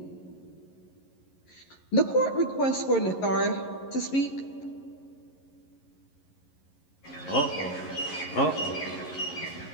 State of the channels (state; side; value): late; right; 11 ms